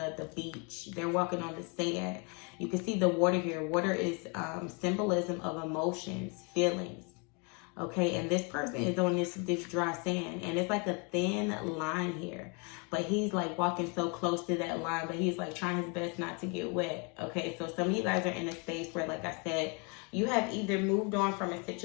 beach. They're walking on the sand. You can see the water here. Water is symbolism of emotions, feelings. Okay, and this person is on this dry sand, and it's like a thin line here, but he's like walking so close to that line, but he's like trying his best not to get wet. Okay, so some of you guys are in a space where, like I said, you have either moved on from a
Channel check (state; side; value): quieter; right; 33.6 dB